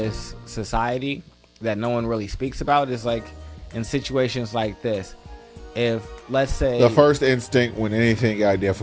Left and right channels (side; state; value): both; identical; correlation 1.00